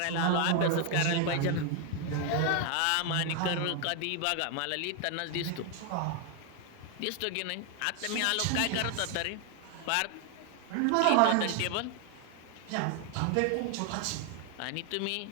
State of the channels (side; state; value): both; different; correlation 0.00